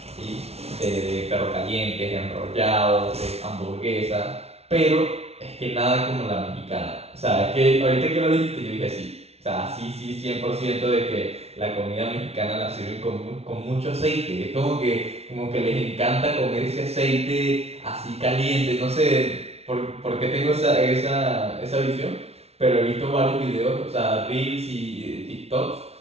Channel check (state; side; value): late; left; 0.30 ms